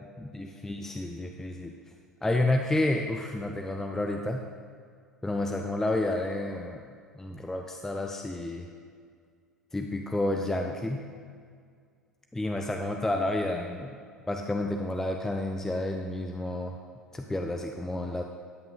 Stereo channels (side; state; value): both; normal; correlation 0.80